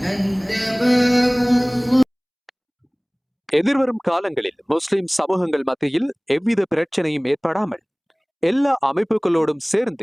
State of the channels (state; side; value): identical; both; correlation 1.00